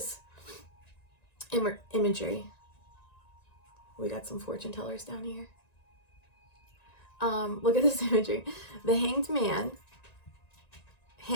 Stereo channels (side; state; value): right; late; 1.9 ms